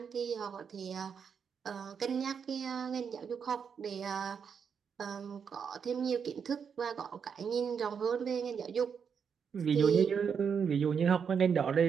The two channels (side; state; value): left; quieter; 6.8 dB